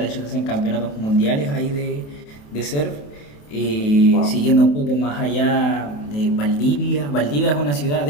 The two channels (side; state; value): right; late; 28 ms